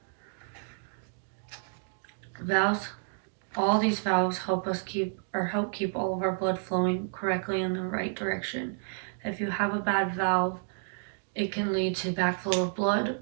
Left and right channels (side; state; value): left; silent; digital silence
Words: Valves, all these valves help keep all of our blood flowing correctly in the right direction. If you have a bad valve, it can lead to backflow of blood